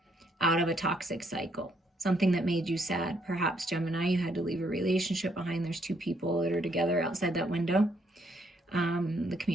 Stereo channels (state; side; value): normal; both; correlation 0.71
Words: out of a toxic cycle. Something that made you sad. Perhaps, Gemini, you had to leave a relationship behind. There's two people that are together outside that window. The